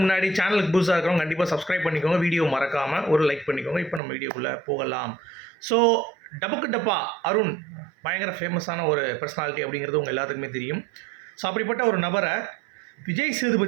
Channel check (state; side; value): drops out; left; at 4.0 s